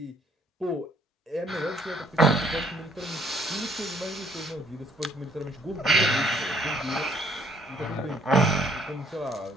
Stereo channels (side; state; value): both; normal; correlation 0.63